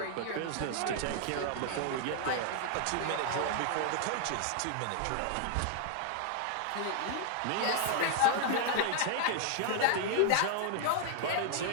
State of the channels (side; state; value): both; different; correlation 0.00